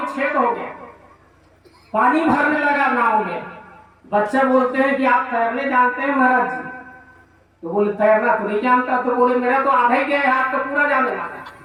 छेद हो गया, पानी भरने लगा नाव में। बच्चा बोलते हैं कि आप तैरने जानते हैं महाराज जी? तो बोले तैरना तो नहीं जानता। तो बोले मेरा तो आधा ही गया, हाथ तो पूरा जाने वाला।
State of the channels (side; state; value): both; identical; correlation 1.00